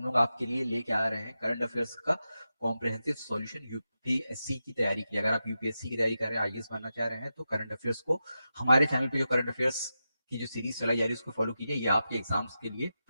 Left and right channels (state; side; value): inverted; both; correlation -0.90